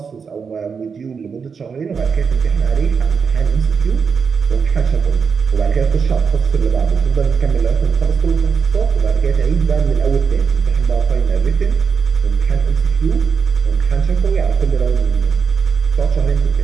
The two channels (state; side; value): quieter; left; 5.9 dB